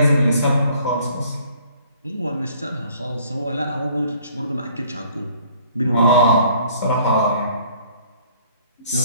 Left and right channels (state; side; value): inverted; both; correlation -0.57